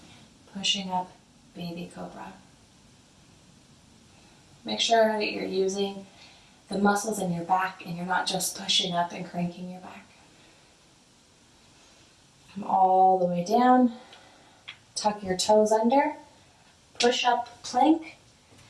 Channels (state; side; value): identical; both; correlation 1.00